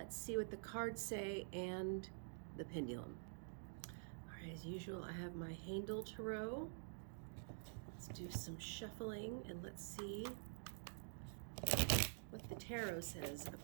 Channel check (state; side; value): silent; left; digital silence